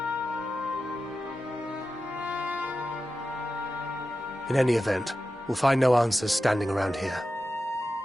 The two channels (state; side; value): normal; both; correlation 0.92